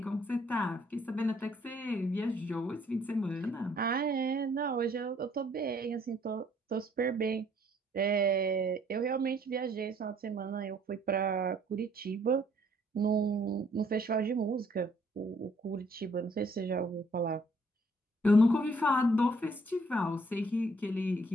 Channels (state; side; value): normal; both; correlation 0.63